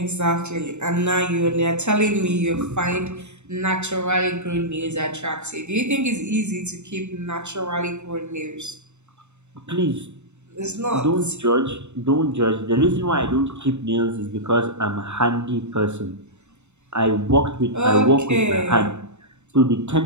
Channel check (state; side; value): late; left; 0.82 ms